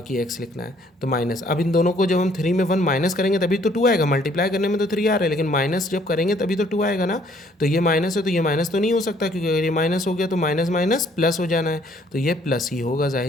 x लिखना है, तो माइनस। अब इन दोनों को जब हम 3 में 1 माइनस करेंगे तभी तो 2 आएगा, मल्टीप्लाई करने में तो 3 आ रहा है, लेकिन माइनस जब करेंगे तभी तो 2 आएगा ना। तो ये माइनस है तो ये माइनस तो नहीं हो सकता, क्योंकि अगर ये माइनस हो गया तो माइनस माइनस प्लस हो जाना है, तो ये प्लस ही होगा,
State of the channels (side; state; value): both; normal; correlation 0.63